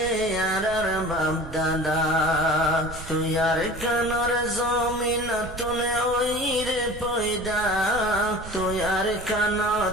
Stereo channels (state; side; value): noise; right; rumble, 13 dB below the sound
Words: আর বাপ দাদা তুয়ার কানর জমিন তুনে ওইরে পয়দা তুয়ার কান